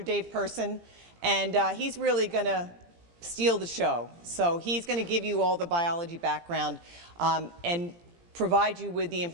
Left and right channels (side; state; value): left; late; 17 ms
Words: Dave Person, and he's really going to steal the show. So he's going to give you all the biology background and provide you with the